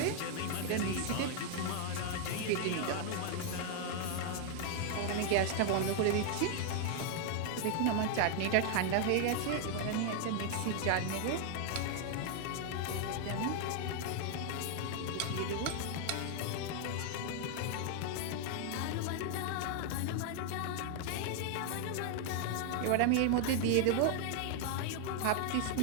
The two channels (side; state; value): both; different; correlation 0.00